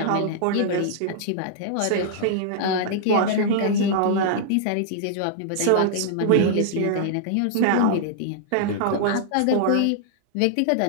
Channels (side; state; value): both; different; correlation -0.01